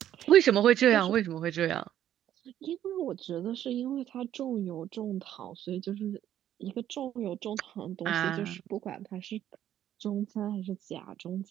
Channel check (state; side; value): quieter; left; 11.3 dB